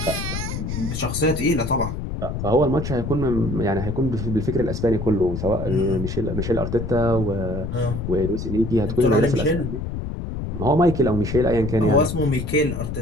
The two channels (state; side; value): noise; left; rumble, 4 dB below the sound